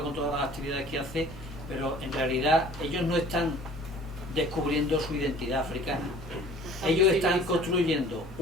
con todas las actividades que hace, pero en realidad ellos no están descubriendo su identidad africana. Ellos están construyendo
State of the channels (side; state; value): both; normal; correlation 0.49